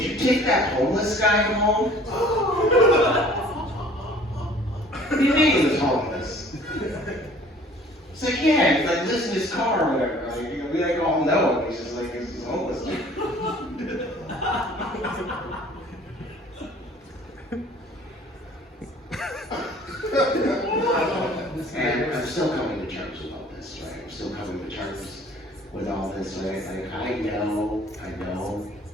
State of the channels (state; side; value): normal; both; correlation 0.51